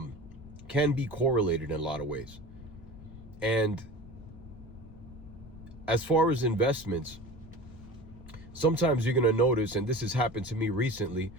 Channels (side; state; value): left; noise; rumble, 17 dB below the sound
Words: be correlated in a lot of ways. And as far as investments, sometimes you're going to notice, and this has happened to me recently,